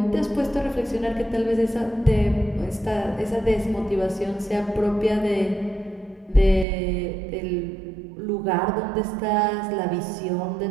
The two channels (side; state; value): left; drops out; at 6.7 s